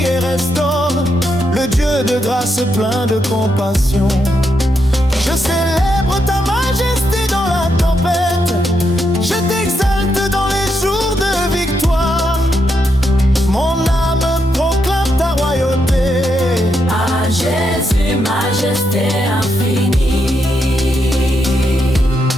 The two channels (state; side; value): normal; both; correlation 0.81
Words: et restaure, le Dieu de grâce plein de compassion. Je célèbre ta majesté dans la tempête. Je t'exalte dans les jours de victoire. Mon âme proclame ta royauté. à Jésus, majesté infinie.